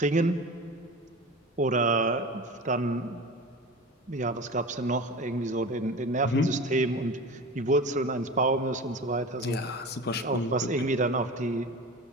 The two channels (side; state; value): both; normal; correlation 0.33